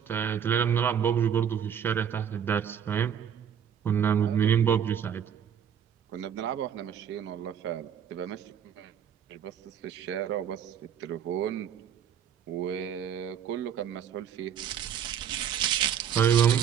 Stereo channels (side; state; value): left; quieter; 8.5 dB